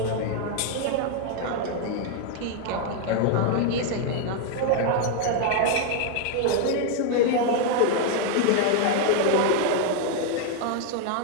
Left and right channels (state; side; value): different; both; correlation 0.00